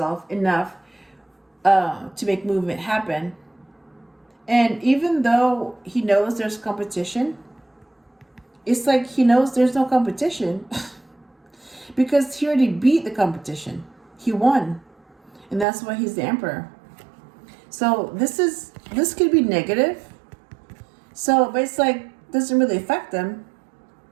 enough to make movement happen. And even though he knows there's competition, it's like he knows there's no competition because he already beat the competition. He won. And that's why he's the Emperor. So this could be negative. So, but it's like, doesn't really affect them.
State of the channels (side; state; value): left; drops out; at 15.7 s